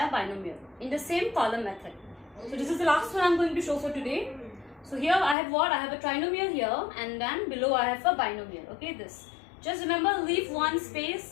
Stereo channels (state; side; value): drops out; right; at 5.4 s